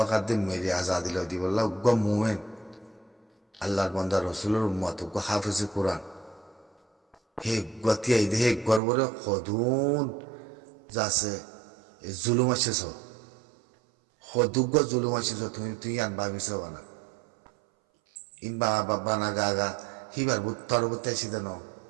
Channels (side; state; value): left; drops out; at 8.8 s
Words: আদি মেরে আজাদি লই দিব উগ্র মোমেন আল্লাহর বান্দা রসুলের উম্মত উগ্র হাফিজ কোরআন হে গতিয়াই দে হে গর্বরে সদুন যাচ্ছে জুলুম আছে সদুগ্য জুলুম আছে তুই আন ভাবিছ বানা ইন বাবা না গা হিবার তরবর্তী আসিতে ন